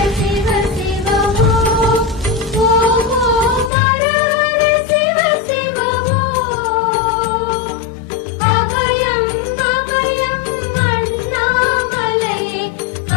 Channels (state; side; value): drops out; right; at 3.7 s